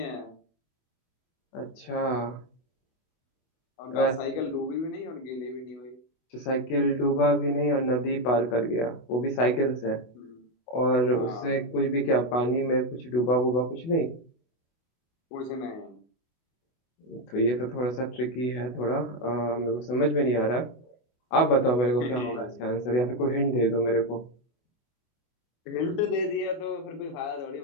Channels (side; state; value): right; late; 24 ms